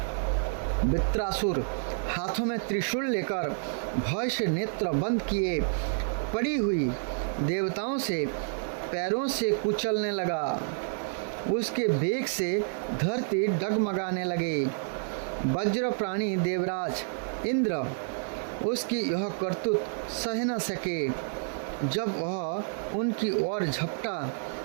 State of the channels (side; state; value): left; silent; digital silence